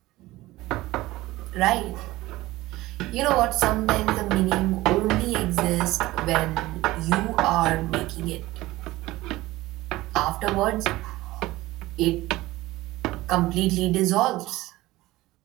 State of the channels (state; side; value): quieter; left; 18.2 dB